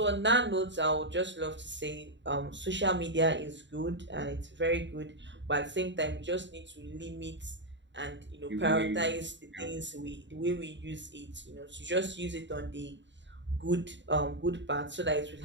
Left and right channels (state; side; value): late; left; 0.53 ms